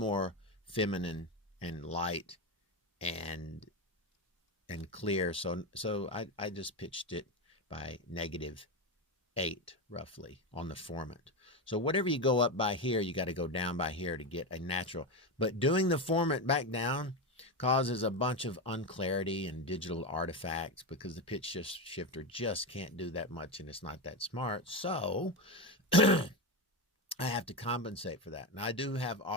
feminine and light and clear. So I just pitched it by -8. 8 roughly on the formant. So whatever you go up by here, you got to go down by here to get a natural. But doing the formant back down causes a bunch of unclarity and digital artifacts because the pitch shifter just can't do that much and it's not that smart. So I have to compensate for that. Now I do have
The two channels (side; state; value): both; normal; correlation 0.15